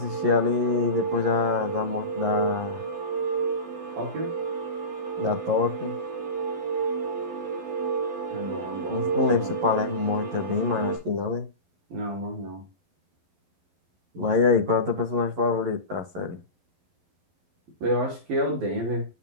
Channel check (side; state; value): left; late; 11 ms